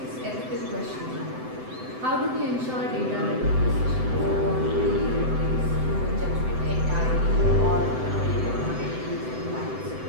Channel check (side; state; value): left; late; 7.8 ms